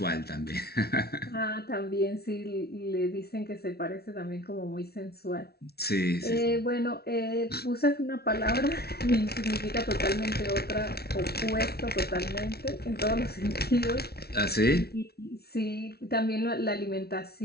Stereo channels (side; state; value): right; late; 0.45 ms